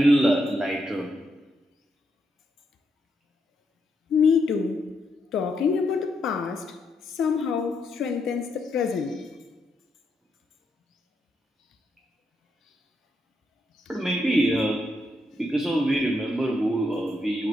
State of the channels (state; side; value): normal; both; correlation 0.80